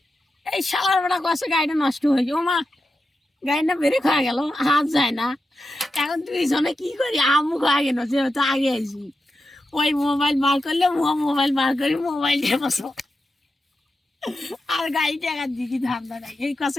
এই সালার বেড়া কষে গাড়িটা নষ্ট হয়েছে। ও মা, গাড়িটা বেড়ে খাওয়া গেল, হাত যায় না। এখন দুইজনে কি করি, আমু খাওয়া গেল, যেহেতু আগে আইসি। ওই মোবাইল বার করলে মোবাইল বার করি, মোবাইল দিয়ে বসো আর গাড়ি টাকার দিকে ধান্দা নাই। এই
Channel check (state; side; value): normal; both; correlation 0.89